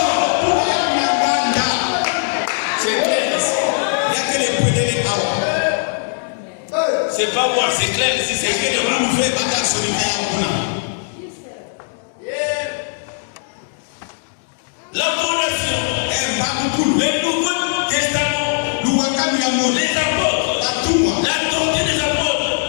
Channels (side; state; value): right; silent; digital silence